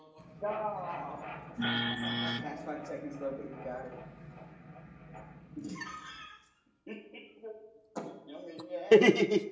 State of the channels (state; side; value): identical; both; correlation 1.00